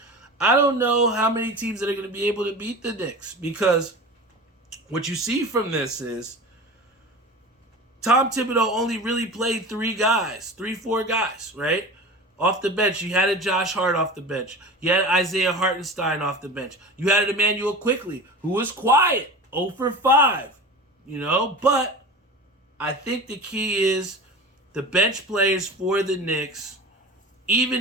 I don't know how many teams that are going to be able to beat the Knicks. Because what you see from this is Tom Thibodeau only really played 4 guys, right? Off the bench. You had a Josh Hart off the bench. You had Isaiah Hartenstein off the bench. You had an Emmanuel Quickley, who was quiet, 0 for 5, But I think the key is the bench players for the Knicks.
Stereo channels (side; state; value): both; normal; correlation 0.33